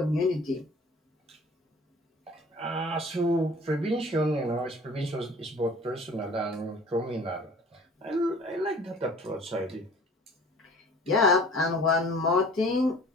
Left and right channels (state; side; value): normal; both; correlation 0.48